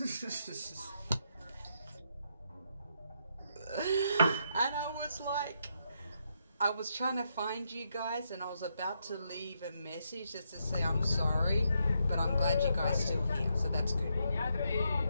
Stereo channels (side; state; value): both; inverted; correlation -0.79